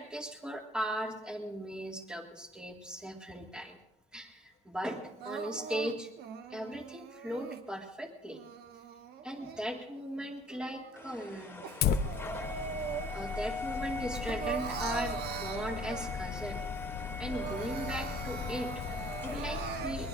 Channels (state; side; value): normal; both; correlation 0.56